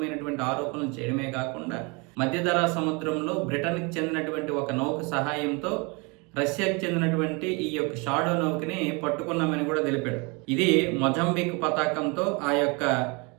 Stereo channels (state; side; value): quieter; left; 29.8 dB